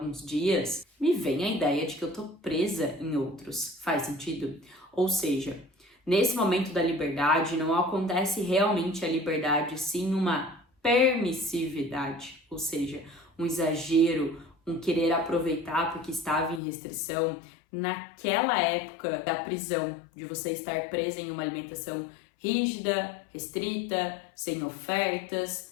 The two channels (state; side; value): drops out; right; at 16.6 s